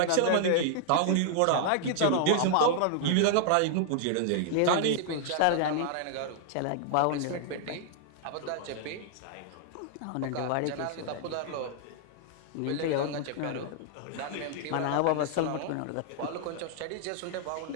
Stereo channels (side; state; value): both; different; correlation -0.01